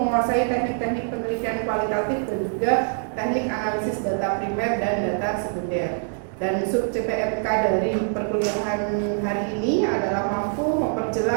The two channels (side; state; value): left; silent; digital silence